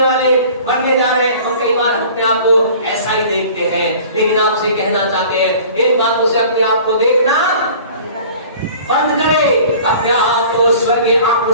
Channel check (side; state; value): both; inverted; correlation -0.46